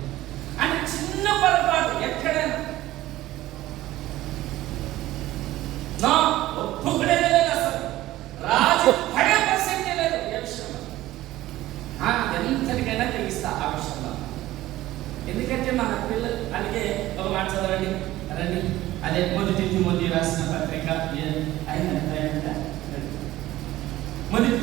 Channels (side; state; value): left; quieter; 15.9 dB